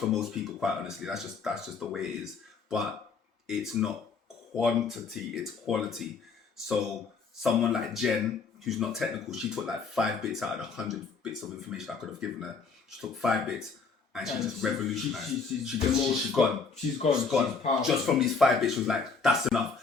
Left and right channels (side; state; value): right; quieter; 4.9 dB